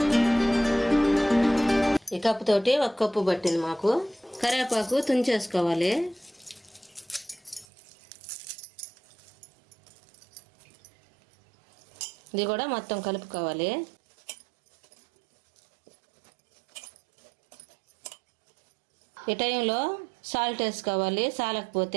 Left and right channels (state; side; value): drops out; left; at 7.7 s